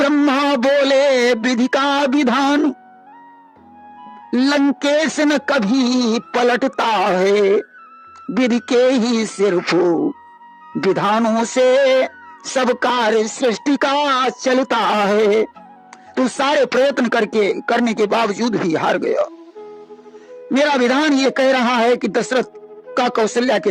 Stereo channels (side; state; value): both; identical; correlation 1.00